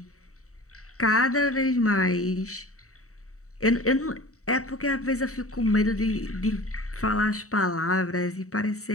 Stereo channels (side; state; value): right; late; 0.65 ms